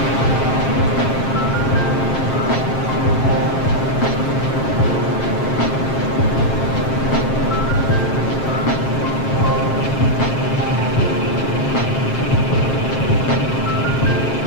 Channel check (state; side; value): late; right; 7.5 ms